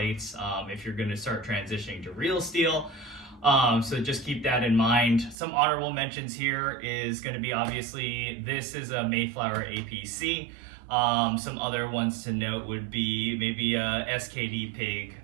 if you're going to start transitioning to real steel. So just keep that in mind. Some honorable mentions here is going to be, obviously, this is a Mayflower APC. Some other ones to note would be maybe a SKD Pig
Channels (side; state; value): left; drops out; at 5.4 s